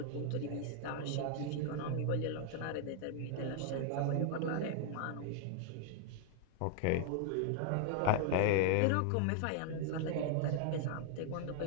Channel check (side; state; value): both; different; correlation 0.00